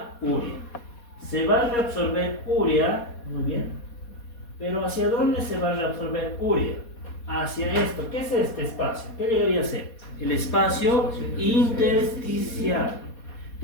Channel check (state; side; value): late; right; 4.2 ms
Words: urea. Se va a reabsorber urea, muy bien, pero ¿hacia dónde se va a reabsorber urea? Hacia esto. ¿Qué es este espacio? ¿Qué debería ser? El espacio intersticial.